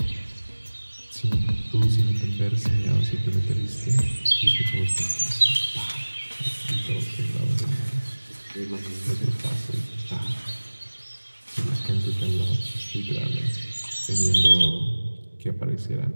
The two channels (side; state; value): both; inverted; correlation -1.00